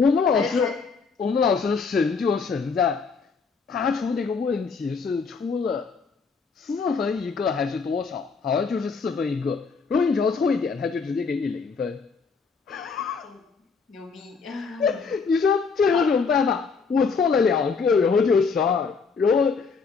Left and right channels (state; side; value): quieter; right; 5.1 dB